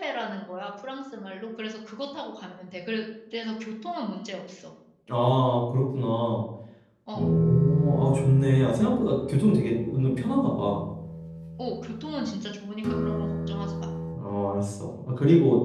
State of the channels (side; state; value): both; identical; correlation 1.00